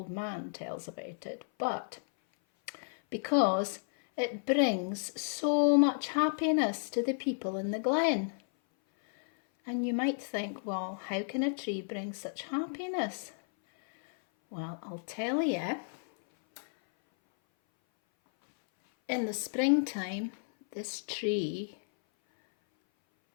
man tells about it, but because it brings so much happiness to the people in the glen. And you might think, well, how can a tree bring such happiness? Well, I'll tell you. In the springtime, this tree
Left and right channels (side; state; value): right; silent; 56 dB below the other